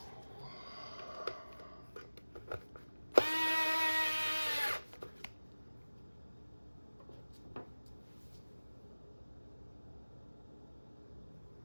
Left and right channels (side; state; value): both; inverted; correlation -1.00